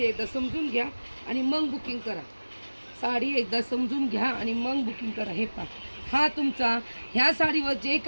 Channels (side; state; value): both; inverted; correlation -1.00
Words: एकदा समजून घ्या आणि मग बुकिंग करा. साडी एकदा समजून घ्या आणि मग बुकिंग करा. हे पहा, हा तुमचा ह्या साडीवर जे